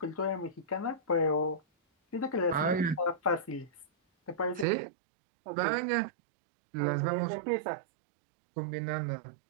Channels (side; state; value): left; drops out; at 4.7 s